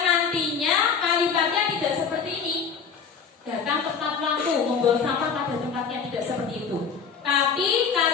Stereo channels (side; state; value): right; quieter; 6.2 dB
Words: nantinya kalimatnya tidak seperti ini. Datang tepat waktu, membuang sampah pada tempatnya, tidak seperti itu. Tapi